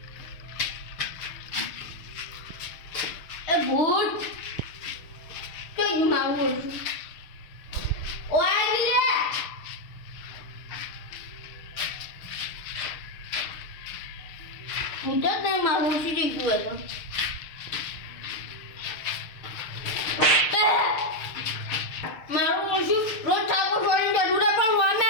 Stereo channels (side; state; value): right; late; 6.6 ms